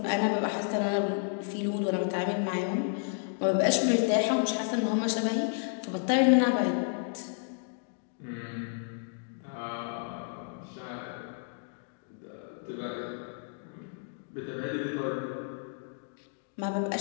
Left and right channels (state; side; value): silent; right; 57 dB below the other